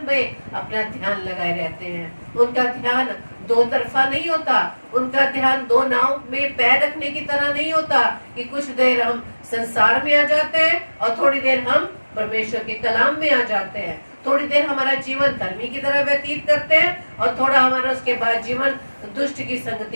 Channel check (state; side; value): inverted; both; correlation -1.00